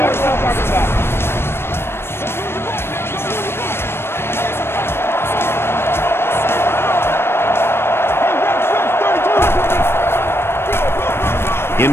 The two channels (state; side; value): late; right; 0.12 ms